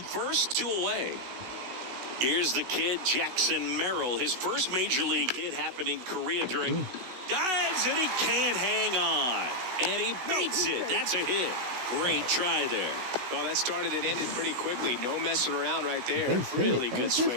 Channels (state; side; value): late; left; 16 ms